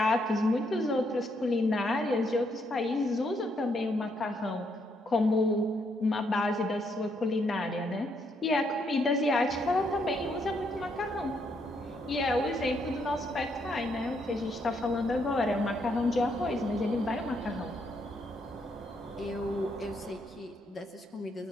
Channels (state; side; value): normal; both; correlation 0.75